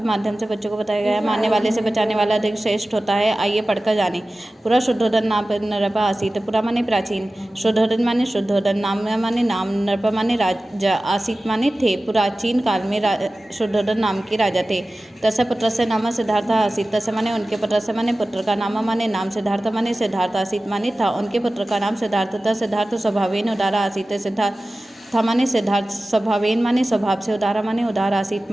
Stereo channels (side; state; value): both; normal; correlation 0.96